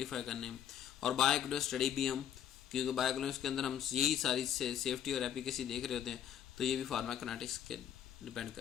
करने हैं, और बायोइक्विवेलेंस स्टडी भी हम, क्योंकि बायोइक्विवेलेंस के अंदर हम यही सारी सेफ्टी और एफिकेसी देख रहे होते हैं, तो ये भी फार्माकोकाइनेटिक्स के डिपेंड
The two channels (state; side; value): quieter; right; 9.8 dB